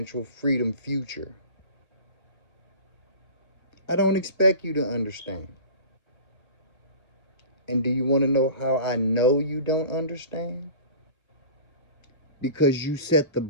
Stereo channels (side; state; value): right; late; 1.4 ms